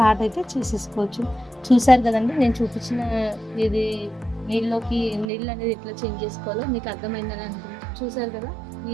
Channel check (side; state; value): left; drops out; at 5.2 s